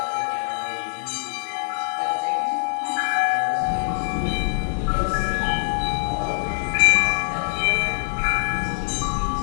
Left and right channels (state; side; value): silent; right; 63 dB below the other